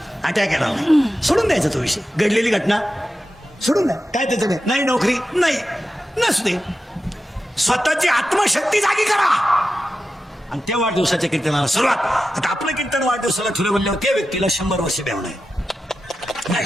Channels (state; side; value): normal; both; correlation 0.91